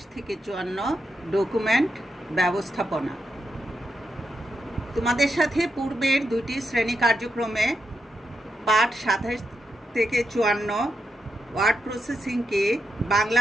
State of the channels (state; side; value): normal; both; correlation 0.84